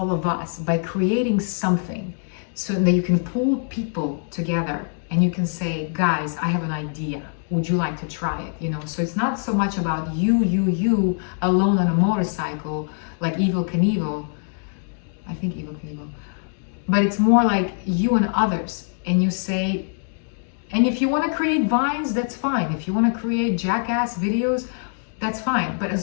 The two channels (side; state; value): right; silent; 61 dB below the other